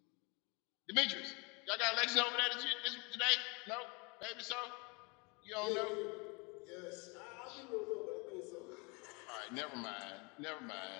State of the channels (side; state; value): right; quieter; 30.0 dB